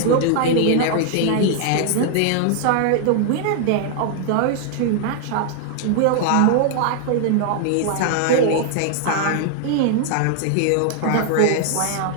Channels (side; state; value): both; different; correlation 0.00